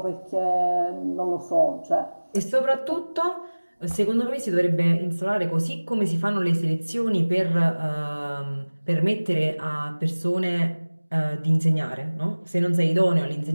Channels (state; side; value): inverted; both; correlation -1.00